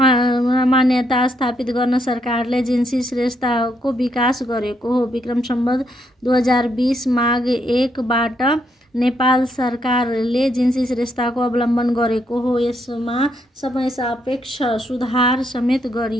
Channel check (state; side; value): normal; both; correlation 0.76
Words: स्थापित गर्न सरकारले जिन्सी श्रेष्ठताको विकास गरेको हो। विक्रम सम्वत 2020 माघ 1 बाट नेपाल सरकारले जिन्सी श्रेष्ठताको अवलम्बन गरेको हो। यसमा समय सापेक्ष सुधार समेत